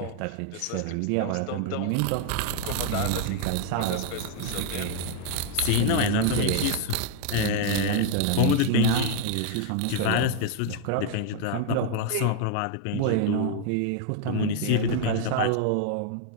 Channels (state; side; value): different; both; correlation 0.00